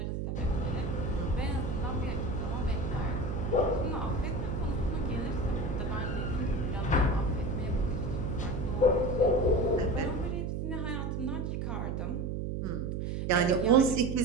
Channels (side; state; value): right; noise; hum, 2 dB below the sound